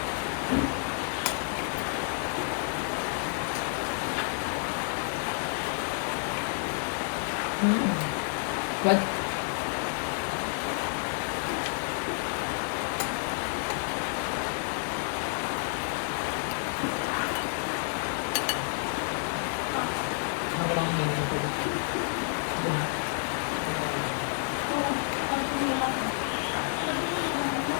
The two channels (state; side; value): silent; right; 58 dB below the other